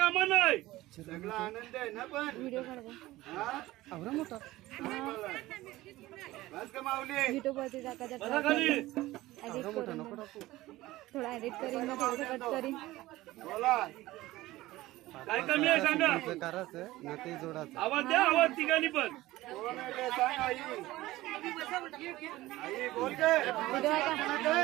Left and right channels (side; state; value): left; quieter; 17.5 dB